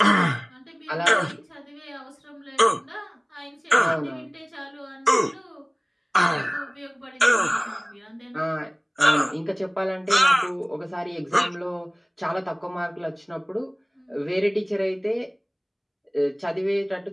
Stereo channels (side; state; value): both; identical; correlation 1.00